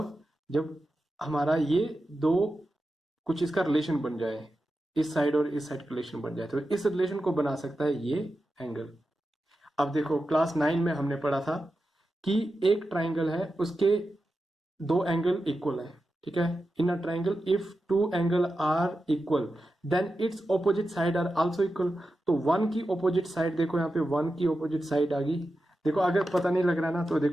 जब हमारा ये दो कुछ इसका रिलेशन बन जाए, इस साइड और इस साइड का रिलेशन बन जाए, तो इस रिलेशन को बना सकता है ये एंगल। अब देखो, क्लास 9 में हमने पढ़ा था कि एक ट्राइंगल है, उसके दो एंगल इक्वल है, ठीक है, in a triangle if two angle are equal then its opposite side are also equal. तो वन की ऑपोजिट साइड देखो, यहाँ पे वन की ऑपोजिट साइड आ गई। देखो अगर पता नहीं लग रहा है ना तो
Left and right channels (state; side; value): normal; both; correlation 0.91